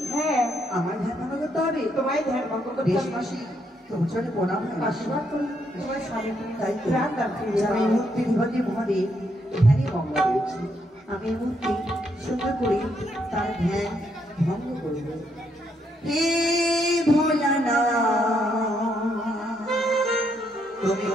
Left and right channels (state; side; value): normal; both; correlation 0.75